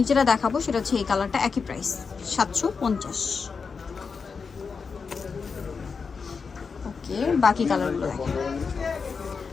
যেটা দেখাবো সেটা হচ্ছে এই কালারটা, একই প্রাইস 750। ওকে, বাকি কালারগুলো দেখেন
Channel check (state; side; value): quieter; right; 5.3 dB